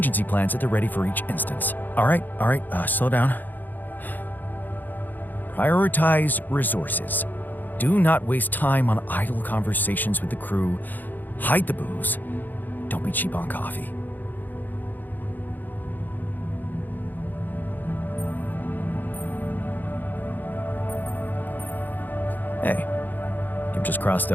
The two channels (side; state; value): right; late; 0.087 ms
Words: plans at the ready for each instance. All right, slow down. Prioritize resources. Do not waste time on idle conversations with the crew. Hide the booze. Don't be cheap on coffee. Hey, you've just crossed